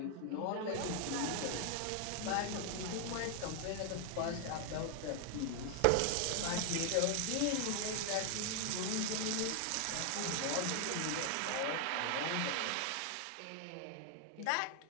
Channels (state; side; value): different; both; correlation 0.00